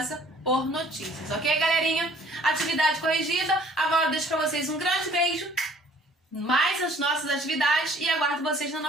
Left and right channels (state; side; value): normal; both; correlation 0.55